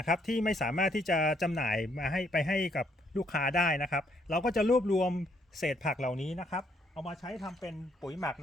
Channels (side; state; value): both; normal; correlation 0.70